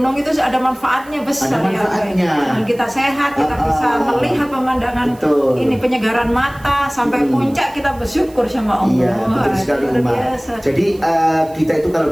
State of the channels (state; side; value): noise; right; hiss, 25 dB below the sound